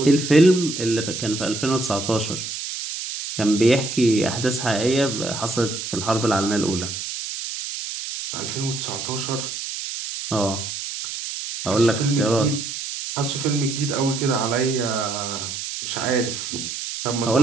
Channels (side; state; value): right; noise; hiss, 6 dB below the sound